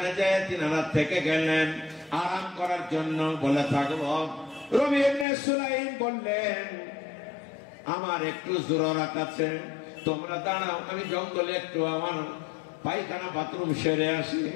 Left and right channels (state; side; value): drops out; right; at 5.2 s